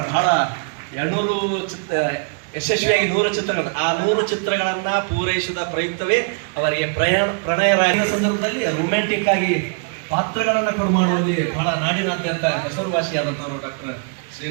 ಬಹಳ 200 ಯಶಸ್ವಿಯಾಗಿ 100 ಚಿತ್ರಗಳು, ಆ 100 ಚಿತ್ರಗಳನ್ನ ಪೂರೈಸಿದ ಪ್ರಯುಕ್ತವೇ ಅವರಿಗೆ ಪ್ರಣಯರಾಗಿರುವ ಸಂದರ್ಭದಲ್ಲಿ ರೊಮ್ಯಾಂಟಿಕ್ ಆಗಿ ಪಾತ್ರಗಳನ್ನ ಕೊಡು ಮಾಡುವಲ್ಲಿ ಬಹಳ ನಾಡಿನಾದ್ಯಂತ ಹೆಸರುವಾಸಿಯಾದಂಥವರು ಡಾಕ್ಟರ್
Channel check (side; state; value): left; quieter; 39.7 dB